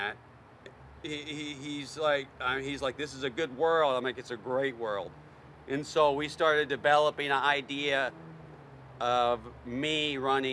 He's like, this is a good world. I'm like, it's a great world. And so we started developing an idea of me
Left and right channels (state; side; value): identical; both; correlation 1.00